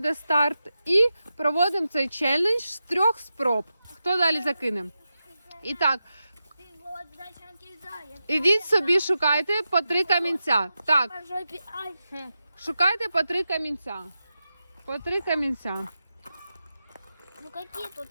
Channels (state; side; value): inverted; both; correlation -0.90